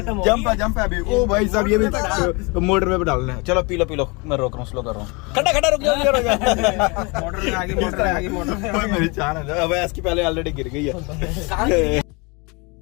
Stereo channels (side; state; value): right; quieter; 28.8 dB